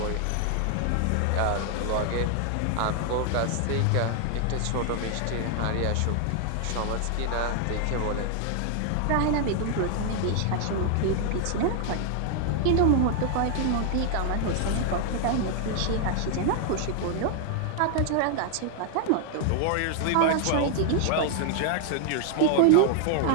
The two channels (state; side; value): different; both; correlation 0.00